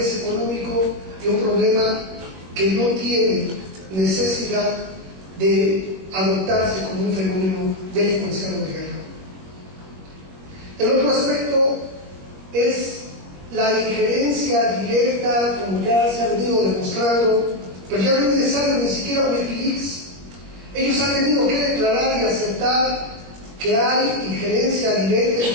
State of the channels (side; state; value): left; late; 21 ms